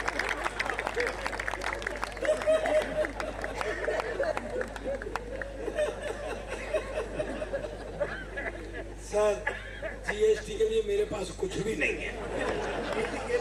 सर GST के लिए मेरे पास कुछ भी नहीं है।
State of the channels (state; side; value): identical; both; correlation 1.00